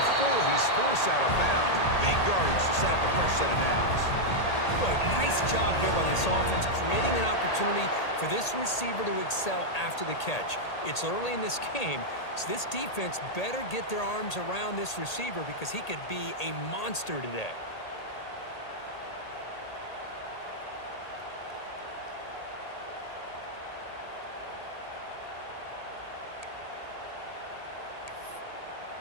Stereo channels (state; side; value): late; right; 1.8 ms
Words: he's forced out of bounds. Big yardage to set up a fresh set of downs. Boy, nice job here by this offense, creating an opportunity for this receiver to excel after the catch. It's early in this game, so this defense better get their arms around this receiver because he could be a monster today.